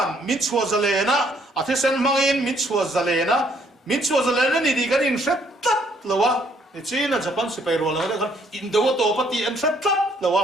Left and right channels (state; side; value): normal; both; correlation 0.67